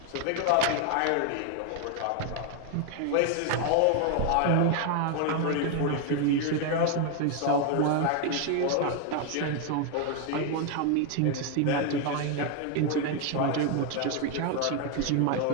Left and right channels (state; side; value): different; both; correlation 0.01